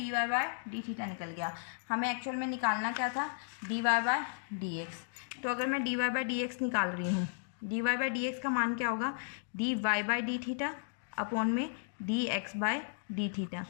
निकल गया। हमें एक्चुअल में निकालना क्या था, dy/dx। तो अगर मैं dy/dx निकाल रही हूँ, dy/dx का मान क्या होगा, dy/d अपॉन में dx/d।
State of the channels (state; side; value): silent; right; digital silence